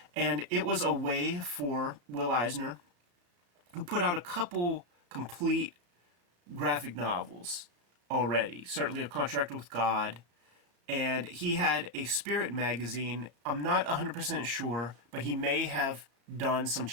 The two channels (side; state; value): left; late; 34 ms